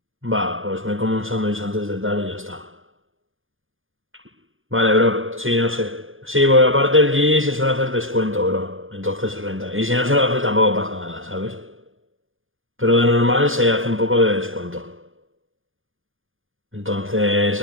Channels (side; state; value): left; late; 0.59 ms